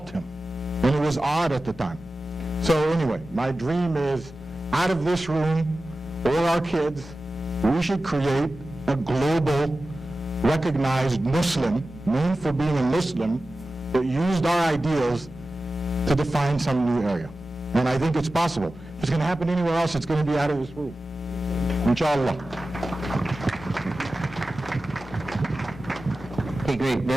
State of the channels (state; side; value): normal; both; correlation 0.95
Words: him. And it was odd at the time. So anyway, my dream is, out of this room, or our kids, we should create a global, recognized Muslim, known for being a Muslim, that used our ideals to define some new area. And I think it's possible. If it's going to happen anywhere else, it's going to be out of this room. Inshallah. Okay, great.